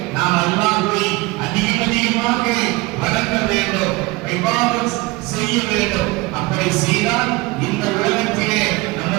நாம் அல்லாஹ்வை அதிகமாக வணங்க வேண்டும், இபாதத் செய்ய வேண்டும். அப்படி செய்தால் இந்த உலகத்திலே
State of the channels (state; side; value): quieter; left; 22.6 dB